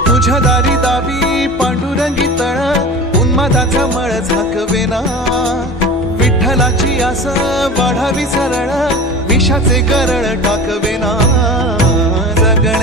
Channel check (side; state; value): both; normal; correlation 0.35